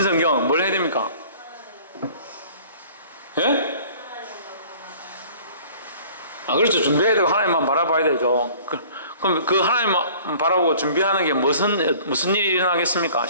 뭘 해야 됩니까? 예? 그렇죠. 준비해야 되고 하나님만 바라봐야 되죠. 그럼 그 하나님만 바라보고 준비하는 게 무슨 일이 일어나겠습니까?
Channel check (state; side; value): inverted; both; correlation -0.49